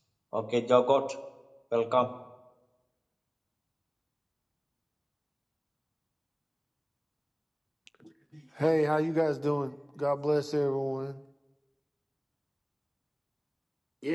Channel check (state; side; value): identical; both; correlation 1.00